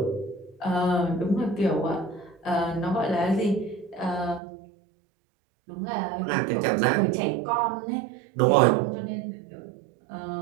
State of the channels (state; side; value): drops out; left; at 4.4 s